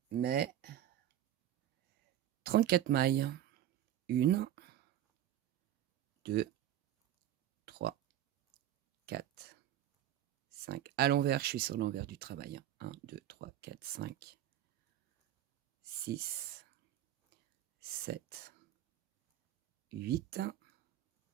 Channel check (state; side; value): quieter; left; 11.8 dB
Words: mes 34 mailles. 1, 2, 3, 4, 5. À l'envers, je suis sur l'envers du travail. 1, 2, 3, 4, 5, 6, 7, 8,